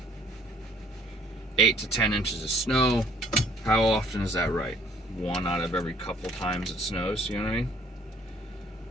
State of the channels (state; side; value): normal; both; correlation 0.59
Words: 8 to 10 inches of snow. How often is that right? One out of every couple times it snows, you know what I mean?